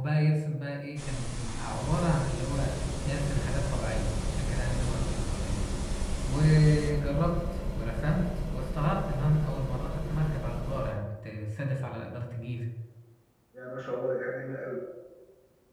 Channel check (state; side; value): identical; both; correlation 1.00